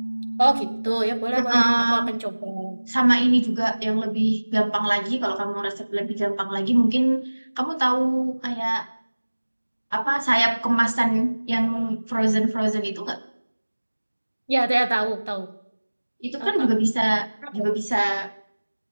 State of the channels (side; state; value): both; inverted; correlation -1.00